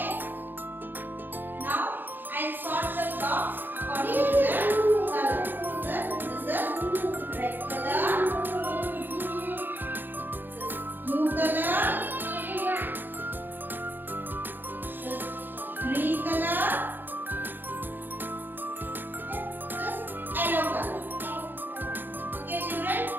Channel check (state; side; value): late; left; 0.093 ms